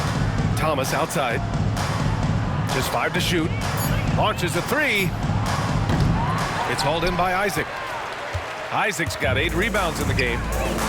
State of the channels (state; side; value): identical; both; correlation 1.00